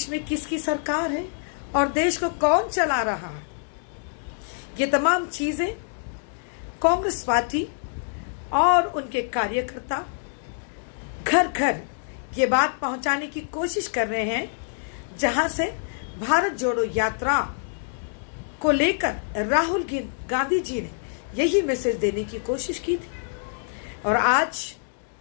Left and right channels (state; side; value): silent; right; digital silence